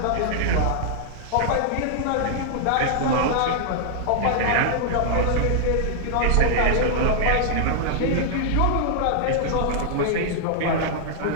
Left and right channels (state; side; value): different; both; correlation -0.01